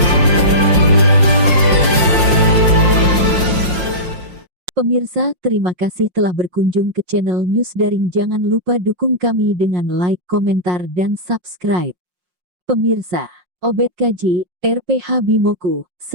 Pemirsa, terima kasih telah berkunjung ke channel News Daring. Jangan lupa dukung kami dengan like, komentar, dan subscribe. Pemirsa, Obed Kaji, RPH Bimoku,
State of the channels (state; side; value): late; left; 5.6 ms